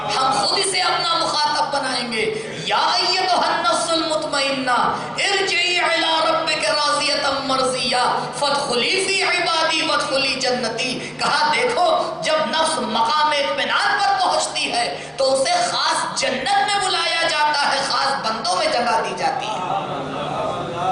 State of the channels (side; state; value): both; identical; correlation 1.00